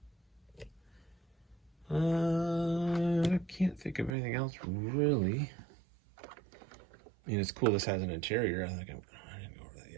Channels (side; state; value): left; drops out; at 4.2 s